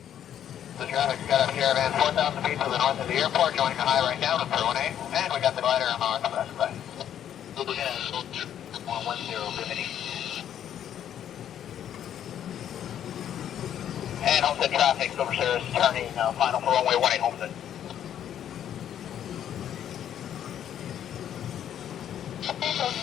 The traffic's got a caravan 4,000 feet to the north of the airport, joining the high right now to 1A, and we got the glider on our west side. Lieutenant 110, Bimini. And Homestead traffic, Silver Sirius turning final for runway 18 Homestead.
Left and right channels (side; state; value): right; quieter; 10.1 dB